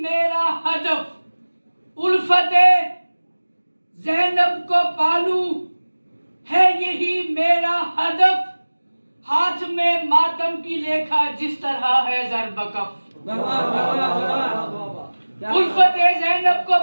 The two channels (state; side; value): inverted; both; correlation -1.00